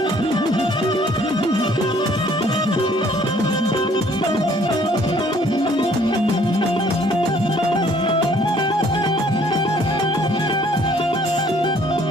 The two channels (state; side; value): normal; both; correlation 0.60